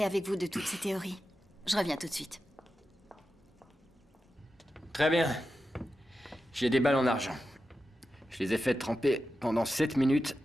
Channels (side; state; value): both; normal; correlation 0.91